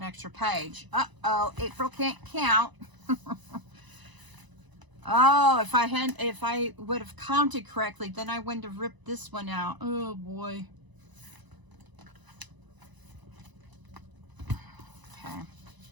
extra page. Uh-oh, April can't count. Oh, if I would have counted correctly, then I wouldn't have ripped this one out. Oh boy. Okay.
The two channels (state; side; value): late; left; 1.0 ms